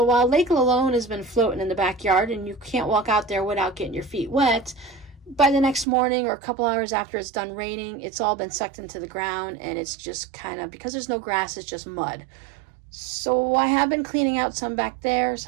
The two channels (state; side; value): drops out; left; at 5.9 s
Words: while Lake Lalone has been floating in the backyard and you can't walk out there without getting your feet wet, by the next morning or a couple hours after it's done raining, it's all been sucked into the ground and it's just kind of, because there's no grass, it's just mud. So I have been cleaning out some back there,